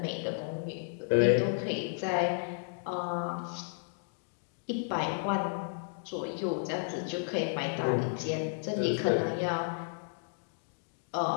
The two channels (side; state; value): right; silent; digital silence